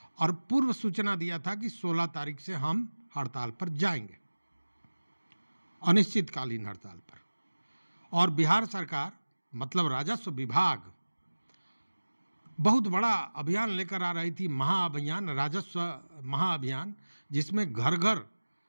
और पूर्व सूचना दिया था कि 16 तारीख से हम हड़ताल पर जाएंगे, अनिश्चितकालीन हड़ताल पर। और बिहार सरकार मतलब राजस्व विभाग बहुत बड़ा अभियान लेकर आ रही थी, महाअभियान, राजस्व महाअभियान, जिसमें घर घर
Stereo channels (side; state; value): both; inverted; correlation -1.00